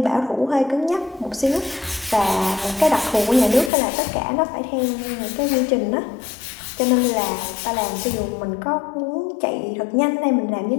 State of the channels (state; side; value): drops out; right; at 3.7 s